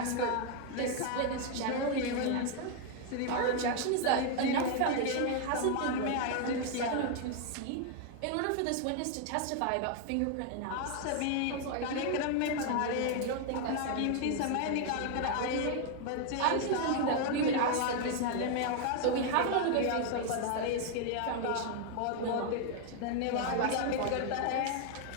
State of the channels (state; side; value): different; both; correlation 0.00